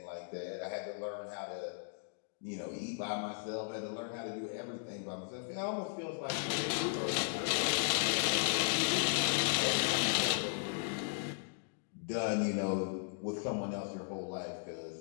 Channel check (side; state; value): right; silent; digital silence